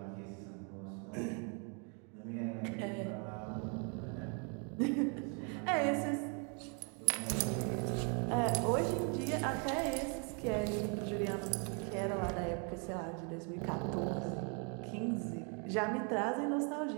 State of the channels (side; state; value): left; quieter; 38.0 dB